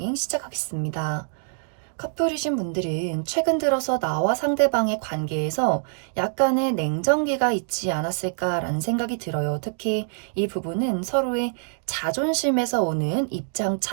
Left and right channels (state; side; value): silent; left; digital silence